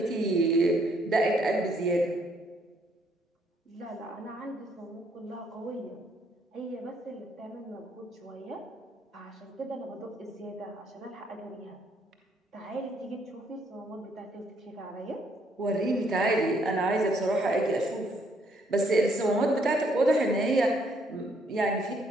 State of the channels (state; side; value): normal; both; correlation 0.69